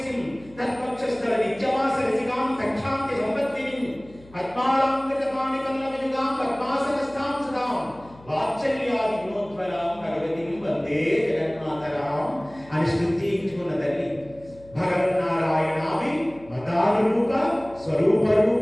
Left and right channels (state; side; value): noise; left; hum, 23 dB below the sound